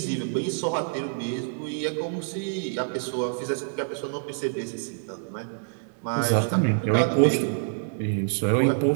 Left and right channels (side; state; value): left; silent; digital silence